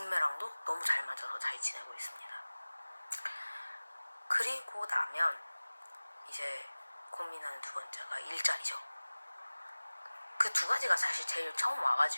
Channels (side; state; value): both; inverted; correlation -1.00